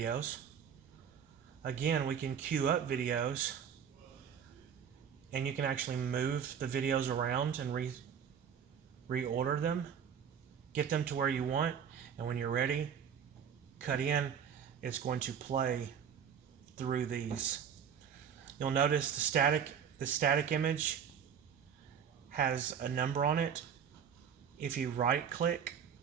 Again, we can queue up videos, and you can actually move the videos around and reorder them, get them to where you want, and when you're ready, cut in. It's going to play through these. You'll notice the static image has a number on it. If you right click,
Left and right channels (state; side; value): quieter; left; 7.8 dB